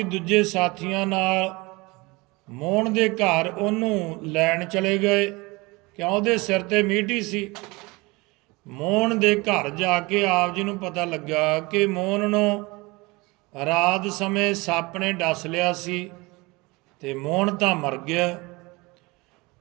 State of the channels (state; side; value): quieter; left; 24.3 dB